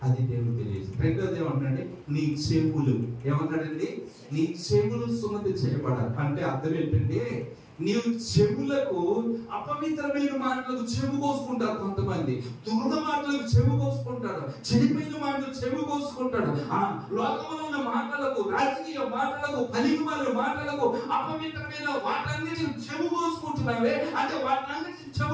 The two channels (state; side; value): identical; both; correlation 1.00